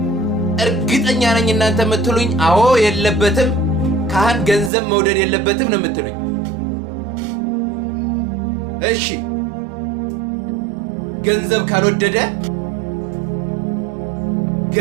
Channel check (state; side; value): drops out; left; at 4.7 s